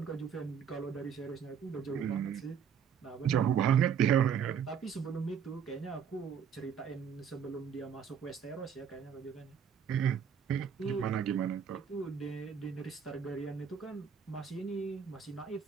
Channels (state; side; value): quieter; left; 7.6 dB